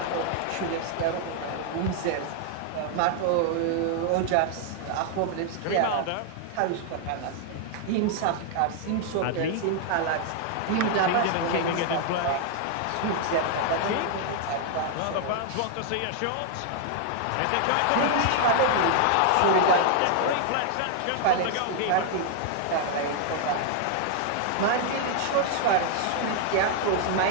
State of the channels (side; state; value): both; different; correlation 0.00